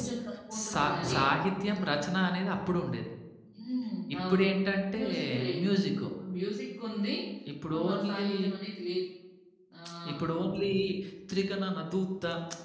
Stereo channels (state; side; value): identical; both; correlation 1.00